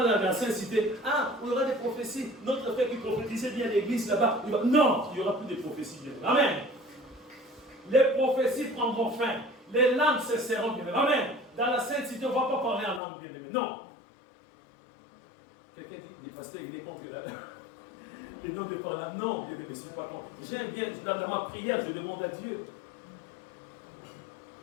dans la Sainte Cité. Ah, il y aura des prophéties. Notre frère qui prophétisait bien l'église là-bas. Non, il n'y aura plus de prophéties, bien aimé. Amen. Les prophéties prendront fin. Les langues cesseront, bien aimé. Amen. Dans la Sainte Cité, on ne va pas parler en langue, bien aimé. Non. Quelqu'un dit, des pasteurs, il est contre les noms de parler. Non, bien aimé, je ne suis pas contre. J'aime bien, dans ma prière, je demande à Dieu.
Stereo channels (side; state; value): right; drops out; at 13.0 s